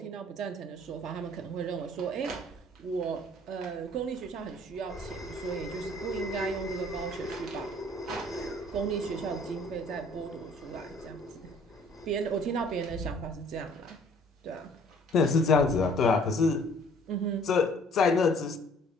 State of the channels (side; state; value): both; normal; correlation 0.56